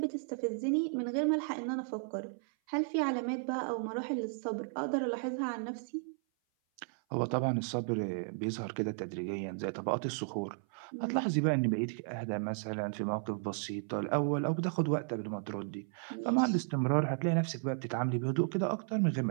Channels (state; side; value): silent; left; 55 dB below the other